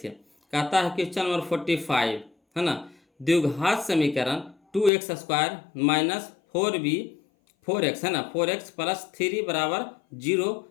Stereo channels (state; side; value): drops out; right; at 4.9 s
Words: कहता है क्वेश्चन नंबर 45, है ना। द्विघात समीकरण 2x² माइनस 4x, है ना, 4x प्लस 3 बराबर 0